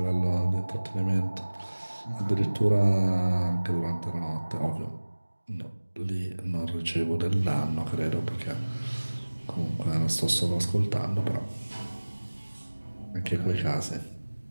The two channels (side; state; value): both; inverted; correlation -1.00